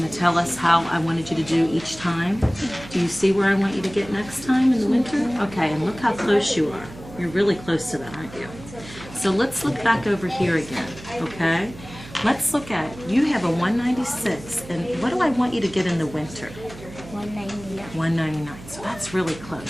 to tell us how I wanted you to do each time? Do you see where I want you to get next time in the winter? Okay, and look how close you are. You're really close to that, aren't you? So let's look back over here again, okay? Let's look at, you have a 196, and what do I want you to get in the winter? 199. 199, so that's really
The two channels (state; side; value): noise; right; hum, 16 dB below the sound